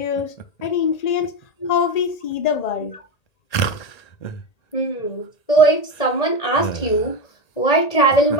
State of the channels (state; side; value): late; right; 1.8 ms